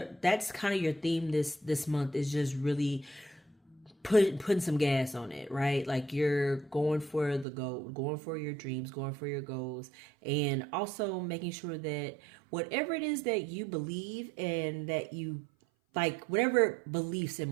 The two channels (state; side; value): drops out; left; at 7.5 s